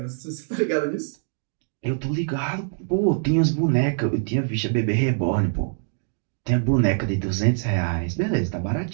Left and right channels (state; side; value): silent; left; digital silence